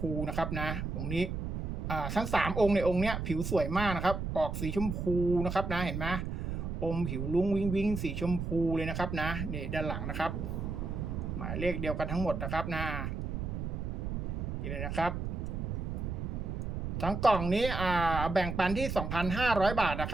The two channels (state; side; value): noise; right; rumble, 3 dB below the sound